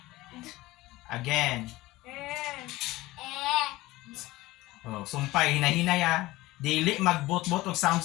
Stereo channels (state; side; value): quieter; right; 18.7 dB